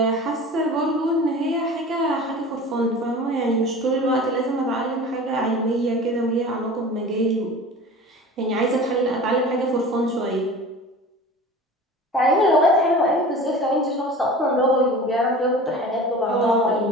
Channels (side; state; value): both; normal; correlation 0.38